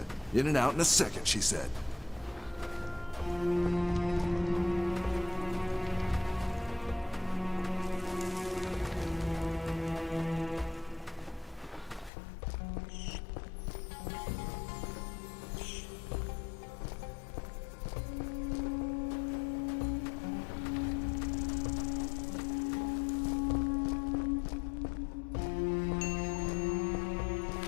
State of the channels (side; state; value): right; drops out; at 12.1 s